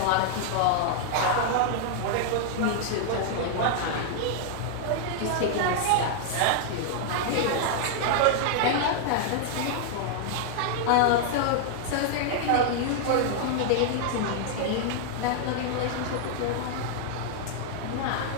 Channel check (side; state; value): both; different; correlation -0.01